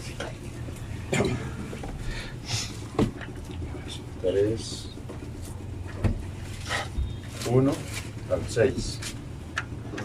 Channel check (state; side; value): identical; both; correlation 1.00